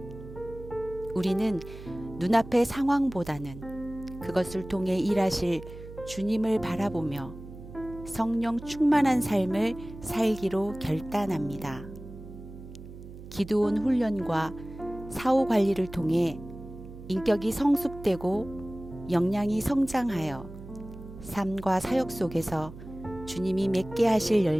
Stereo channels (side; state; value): right; noise; hum, 14 dB below the sound